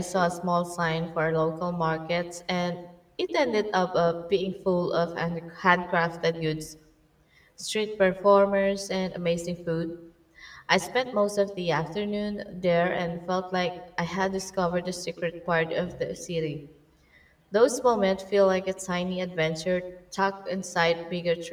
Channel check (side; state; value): both; identical; correlation 1.00